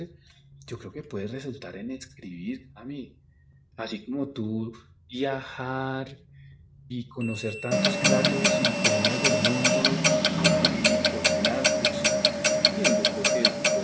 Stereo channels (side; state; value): both; identical; correlation 1.00